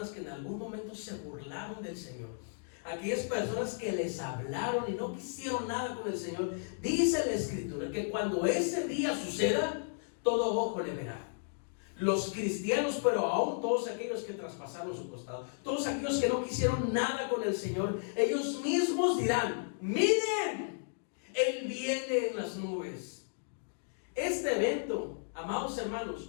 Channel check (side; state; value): right; silent; digital silence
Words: que en algún momento se burlaron del Señor, aquellas personas que les hablaron y no quisieron nada con el Señor, dice la Escritura que cuando ese día suceda, todo ojo le verá. Los cristianos, pero aún todos aquellos que traspasaron su costado, todos aquellos que no quisieron nada con el Señor, ellos mismos dirán: miren, Él viene en las nubes. Este evento, amados